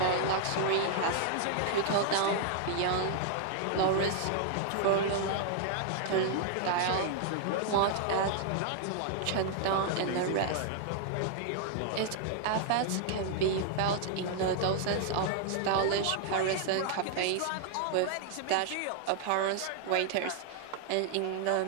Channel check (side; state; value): both; different; correlation -0.01